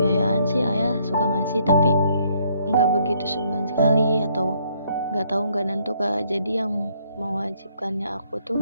sih ayah suka ngasih, tapi nggak begitu sebulan sekali atau nggak nentu Kak. Jadi yang mewajibkannya aku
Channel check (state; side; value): inverted; both; correlation -0.68